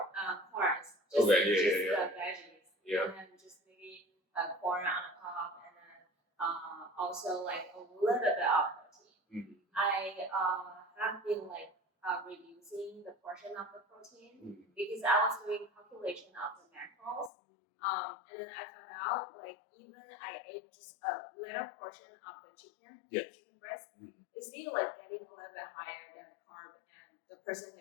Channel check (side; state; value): right; drops out; at 17.3 s